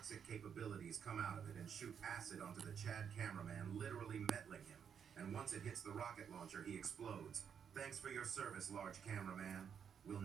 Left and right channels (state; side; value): quieter; left; 7.6 dB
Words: capabilities come out of it and shoot acid onto the Chad cameraman, literally mettling him. And once it hits the rocket launcher, he explodes. Thanks for your service, large cameraman. We'll